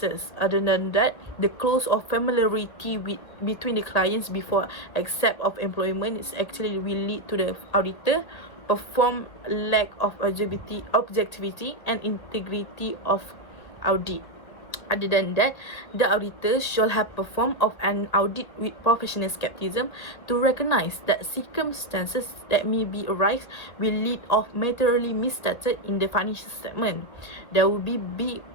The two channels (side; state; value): right; late; 1.9 ms